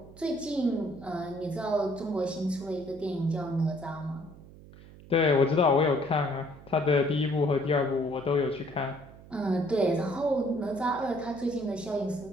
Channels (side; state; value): right; noise; hum, 19 dB below the sound